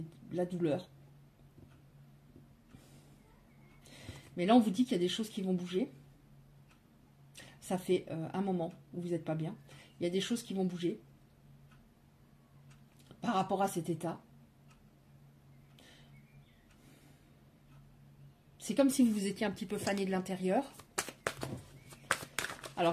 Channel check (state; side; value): identical; both; correlation 1.00